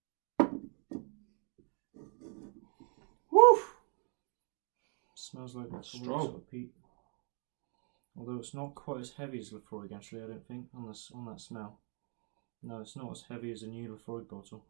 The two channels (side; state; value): left; quieter; 39.2 dB